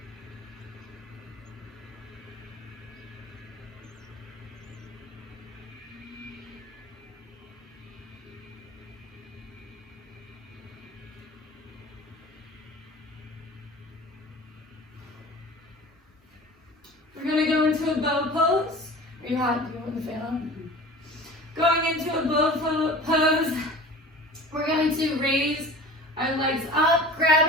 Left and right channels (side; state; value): both; normal; correlation 0.40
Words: We're going to go into a bow pose. Are you hot? Do you want the fan on? Going into a bow pose, we're going to raise our legs up,